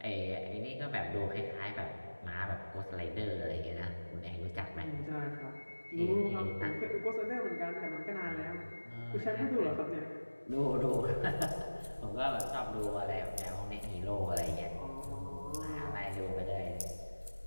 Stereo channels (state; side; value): inverted; both; correlation -1.00